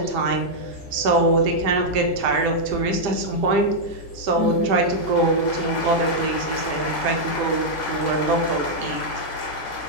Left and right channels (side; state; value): right; late; 1.9 ms